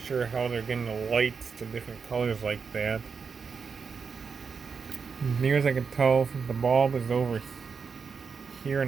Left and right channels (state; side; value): quieter; left; 5.6 dB